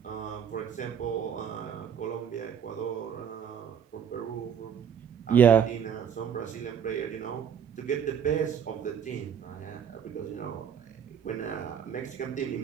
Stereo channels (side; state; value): left; quieter; 8.2 dB